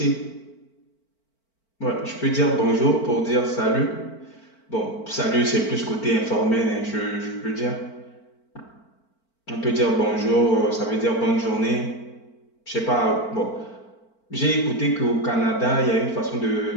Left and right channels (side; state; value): right; late; 4.5 ms